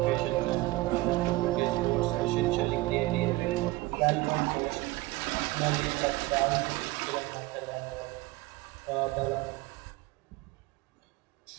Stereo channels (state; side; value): quieter; left; 20.1 dB